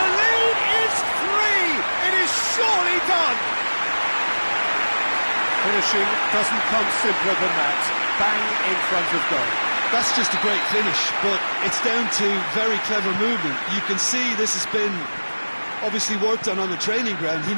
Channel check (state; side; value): inverted; both; correlation -1.00